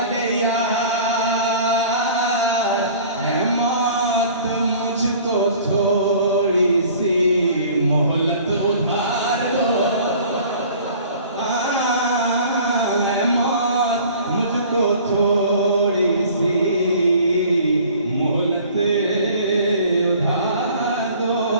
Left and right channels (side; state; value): both; inverted; correlation -0.48